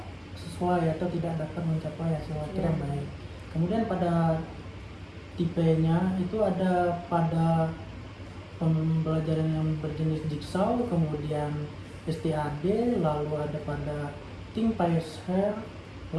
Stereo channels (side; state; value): both; identical; correlation 1.00